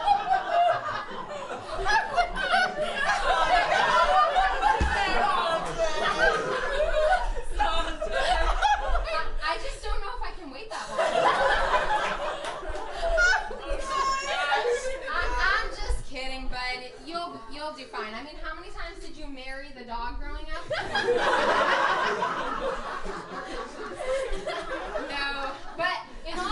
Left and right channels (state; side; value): identical; both; correlation 1.00